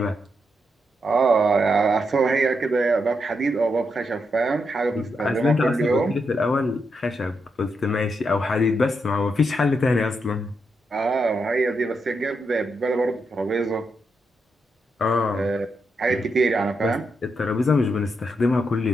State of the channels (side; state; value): both; normal; correlation 0.82